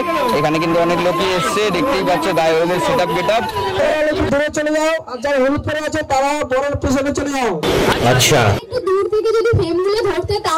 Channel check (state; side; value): identical; both; correlation 1.00